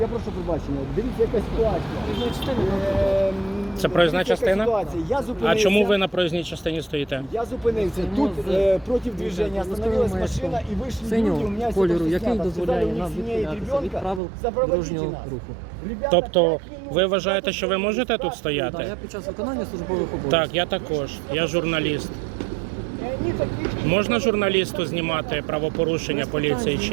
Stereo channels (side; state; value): left; drops out; at 14.2 s